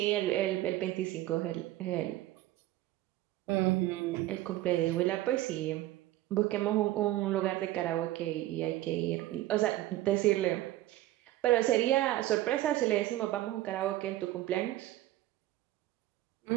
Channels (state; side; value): quieter; left; 15.5 dB